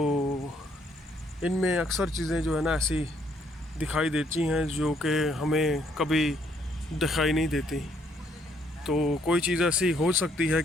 इनमें अक्सर चीज़ें जो है ना ऐसी दिखाई देती हैं जो कि हमें कभी दिखाई नहीं देती। तो कोई चीज़ ऐसी हो सकती है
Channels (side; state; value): both; normal; correlation 0.69